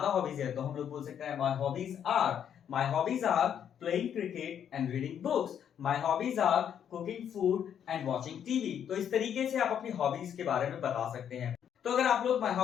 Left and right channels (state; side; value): quieter; right; 8.9 dB